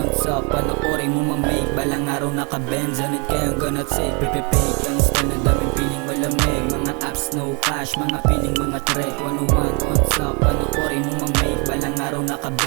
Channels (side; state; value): left; quieter; 33.2 dB